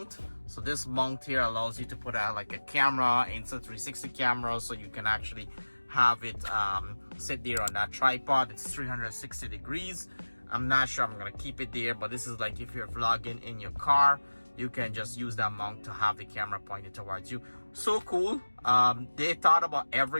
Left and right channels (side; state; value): both; inverted; correlation -1.00